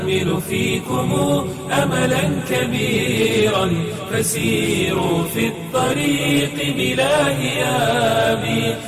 فيكم أملا كبيرا فسيروا في الطريق بلا هياب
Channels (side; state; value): both; identical; correlation 1.00